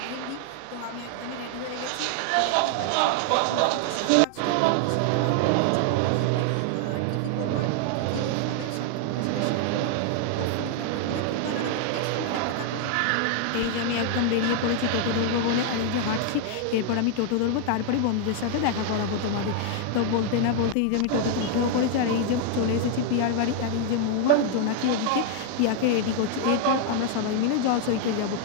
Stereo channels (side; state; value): both; different; correlation 0.00